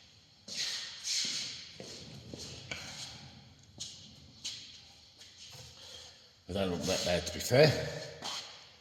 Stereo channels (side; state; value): both; identical; correlation 1.00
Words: They don't look that bad to be fair.